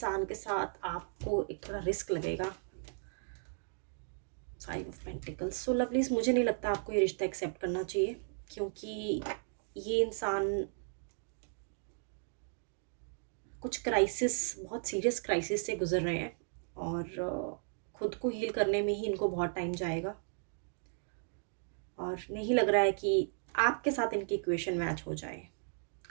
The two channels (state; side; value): silent; left; digital silence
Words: के साथ आपको एक थोड़ा रिस्क लगेगा। 5 ऑफ पेंटिकल्स। सो लवलीज, मुझे नहीं लगता आपको ये रिश्ता एक्सेप्ट करना चाहिए, क्योंकि ये इंसान कुछ क्राइसिस, बहुत सीरियस क्राइसिस से गुजर रहे हैं, और खुद को हील करने में ही इनको बहुत टाइम जाएगा, और नहीं लग रहा है कि आपके साथ इनकी इक्वेशन मैच हो जाए।